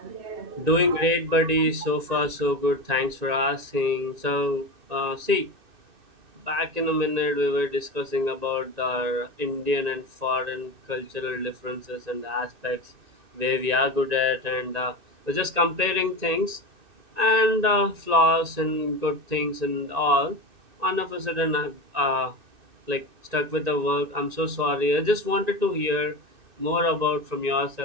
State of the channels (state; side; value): late; left; 2.6 ms